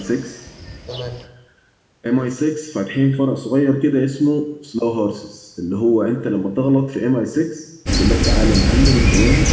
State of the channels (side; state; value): both; identical; correlation 1.00